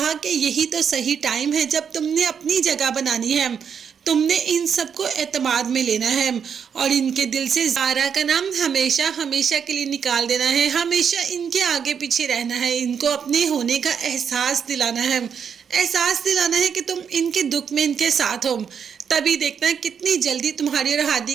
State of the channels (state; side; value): quieter; left; 7.2 dB